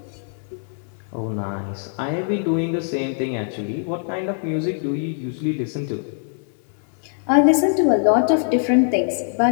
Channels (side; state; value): right; silent; digital silence